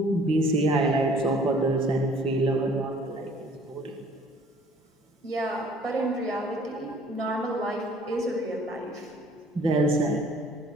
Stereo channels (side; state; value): both; normal; correlation 0.55